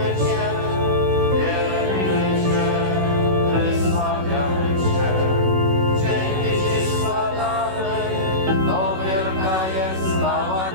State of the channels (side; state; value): left; late; 16 ms